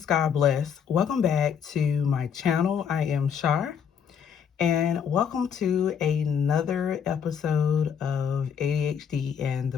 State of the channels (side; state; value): right; quieter; 7.6 dB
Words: God bless. Welcome back to my channel. I am Char, and welcome to another episode of ADHD and the